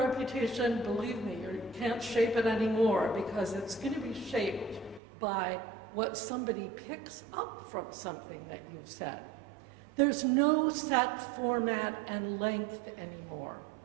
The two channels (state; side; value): drops out; left; at 5.0 s